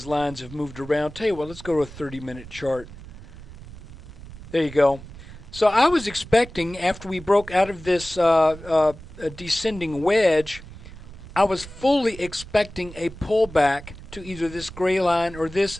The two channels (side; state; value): right; noise; rumble, 16 dB below the sound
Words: lines have moved around. Tell you what, let's go to a 30-minute chart. There you go. So I was expecting, after we broke out of this descending wedge, I was fully expecting a pullback to either this gray line or this,